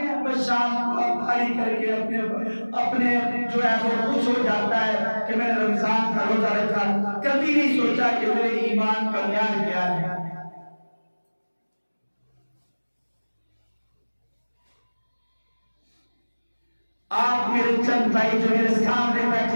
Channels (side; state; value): both; inverted; correlation -1.00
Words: بس شام کو بھاری کر کے اپنے جو ہے وہ خوش ہو جاتا ہے کہ میں نے رمضان کا روزہ رکھا. کبھی نہیں سوچا کہ میرے ایمان کا معیار کیا ہے. آپ میرے چند بھائی جو میرے سامنے